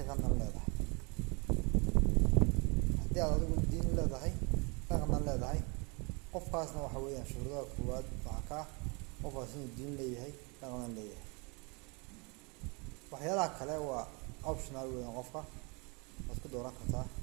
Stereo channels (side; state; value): left; quieter; 30.8 dB